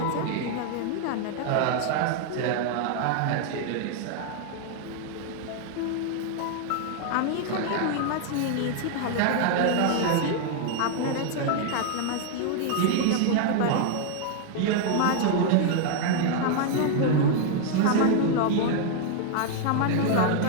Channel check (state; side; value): different; both; correlation 0.00